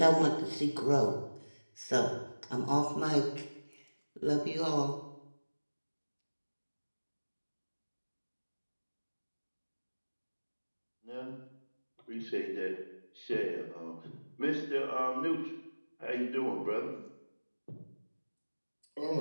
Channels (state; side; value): inverted; both; correlation -1.00